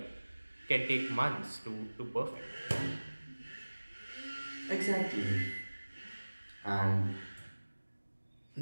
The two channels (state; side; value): inverted; both; correlation -1.00